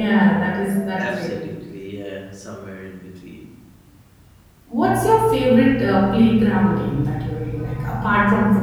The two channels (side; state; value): both; identical; correlation 1.00